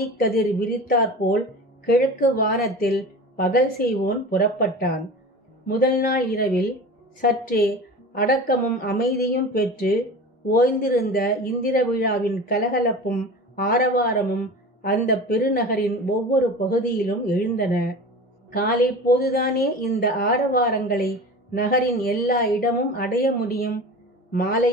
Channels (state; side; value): normal; both; correlation 0.34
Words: விரித்தாற்போல் கிழக்கு வானத்தில் பகல் செய்வோன் புறப்பட்டான். முதல் நாள் இரவில் சற்றே அடக்கமும் அமைதியும் பெற்று ஓய்ந்திருந்த இந்திர விழாவின் கலகலப்பும் ஆரவாரமும் அந்த பெருநகரின் ஒவ்வொரு பகுதியிலும் எழுந்தன. காலை போதுதானே இந்த ஆரவாரங்களை நகரின் எல்லா இடமும் அடைய முடியும்.